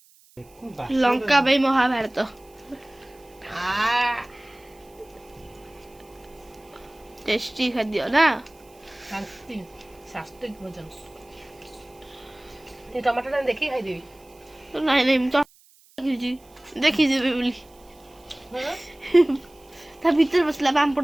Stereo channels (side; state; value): right; noise; hiss, 28 dB below the sound